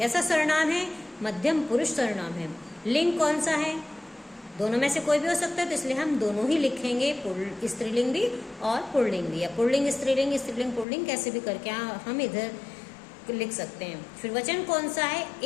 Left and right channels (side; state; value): right; drops out; at 10.9 s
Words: सर्वनाम है? मध्यम पुरुष सर्वनाम है। लिंग कौन सा है? दोनों में से कोई भी हो सकता है, तो इसलिए हम दोनों ही लिखेंगे, स्त्रीलिंग भी और पुल्लिंग भी, या पुल्लिंग स्त्रीलिंग, स्त्रीलिंग पुल्लिंग, कैसे भी करके हम इधर लिख सकते हैं। फिर वचन कौन सा है?